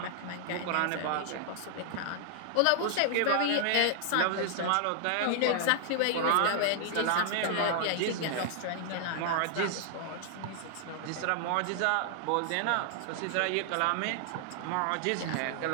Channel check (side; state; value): both; different; correlation 0.00